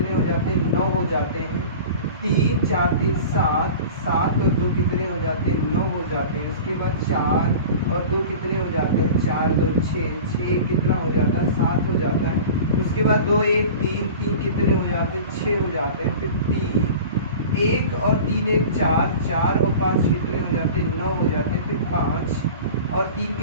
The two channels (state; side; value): inverted; both; correlation -0.37